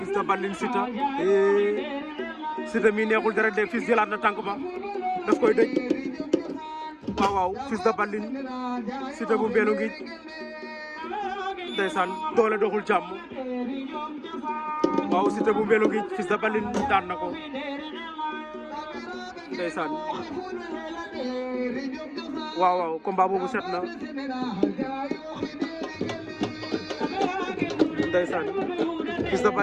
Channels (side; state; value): both; identical; correlation 1.00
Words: de Baline Siteu mi neexul dara de Fils jëlaat na tànk ba daf koy dëj waaw Fils de Baline Siteu bu Mbélo ngi ndeysaan doole doxul jàmm waaw Siteu bu Mbélo ngi Fils de Baline daan na ko ndeysaan waaw combat boobu set na ndeysaan Fils de